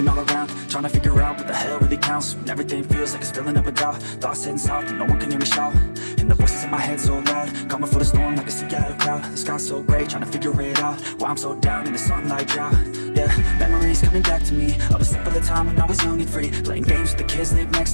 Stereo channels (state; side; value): inverted; both; correlation -1.00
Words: all around, trying to figure out what the hell really counts. When everything feels like it's filling up a doubt. Thoughts heading south, but no one can hear me shout. And the voices in my head so loud, coming for the storm like a Seattle crowd. The sky's so gray, trying to figure it out. Why I'm so down in the sunlight drought. Yeah, memories coming back to me of a simpler time when I was young and free, playing games with the kids live